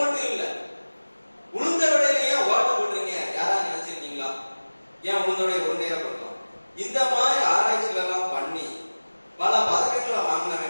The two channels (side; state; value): both; inverted; correlation -1.00